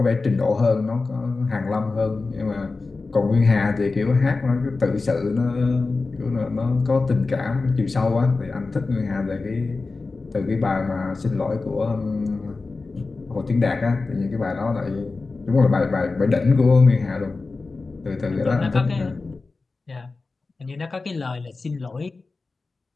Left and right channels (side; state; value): right; quieter; 3.8 dB